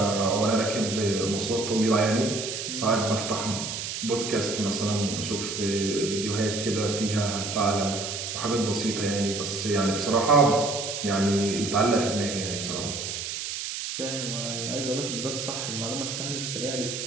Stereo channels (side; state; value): right; noise; hiss, 5 dB below the sound